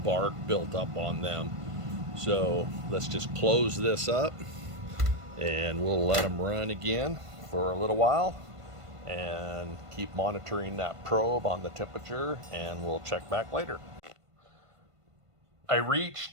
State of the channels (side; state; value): left; late; 1.5 ms